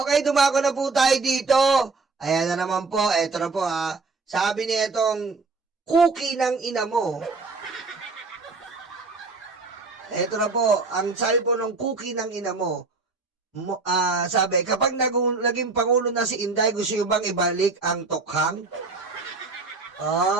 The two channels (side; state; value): left; quieter; 4.0 dB